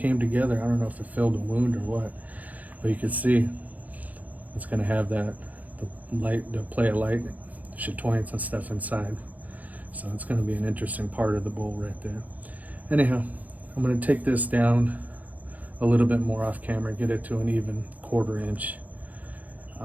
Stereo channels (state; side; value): late; left; 0.077 ms